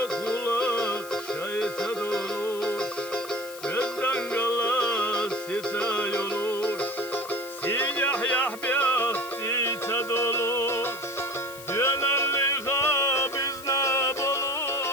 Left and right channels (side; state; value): left; noise; hiss, 15 dB below the sound